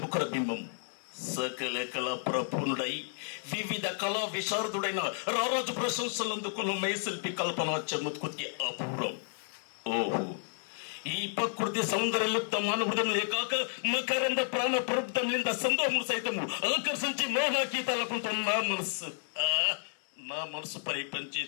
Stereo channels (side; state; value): right; silent; digital silence